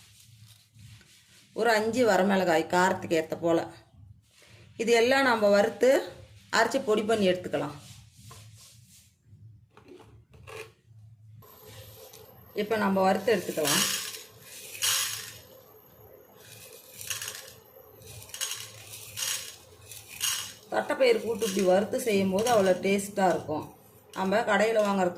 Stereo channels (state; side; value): identical; both; correlation 1.00